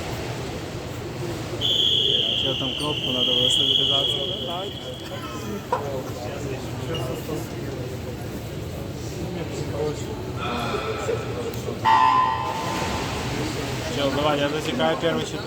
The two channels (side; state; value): both; identical; correlation 1.00